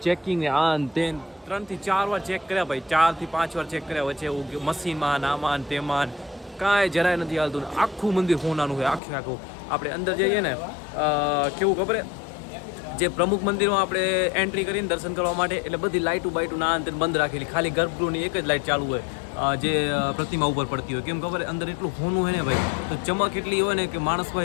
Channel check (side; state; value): right; drops out; at 9.0 s